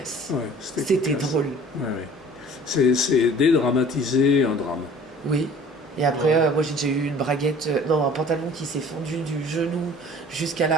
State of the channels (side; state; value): both; normal; correlation 0.48